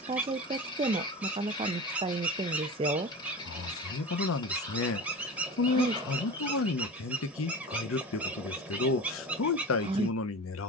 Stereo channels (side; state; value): both; normal; correlation 0.31